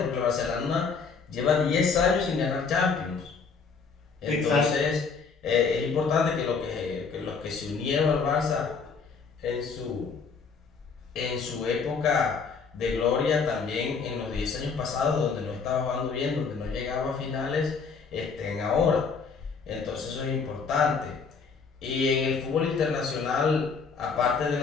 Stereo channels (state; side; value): quieter; right; 5.2 dB